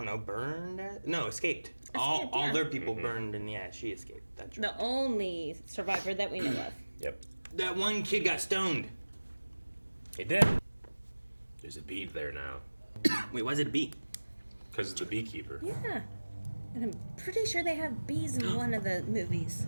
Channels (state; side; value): inverted; both; correlation -1.00